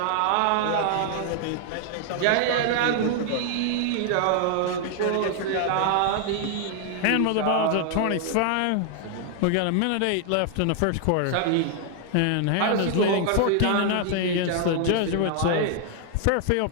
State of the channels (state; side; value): different; both; correlation 0.00